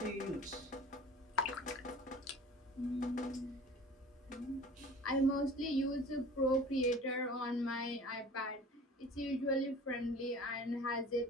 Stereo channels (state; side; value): normal; both; correlation 0.43